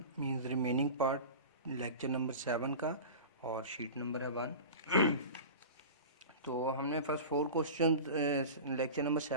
means remaining part lecture number 7 का और sheet number है 1। तो हमने first 4 question lecture number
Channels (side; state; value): both; inverted; correlation -0.33